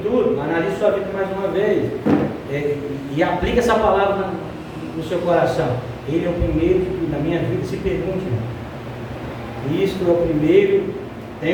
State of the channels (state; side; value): identical; both; correlation 1.00